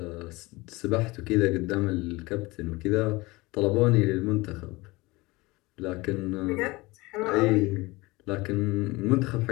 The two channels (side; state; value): right; quieter; 22.3 dB